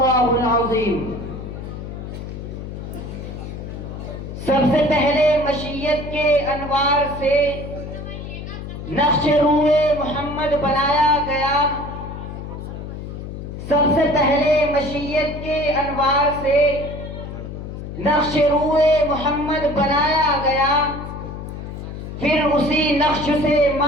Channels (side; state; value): left; noise; hum, 9 dB below the sound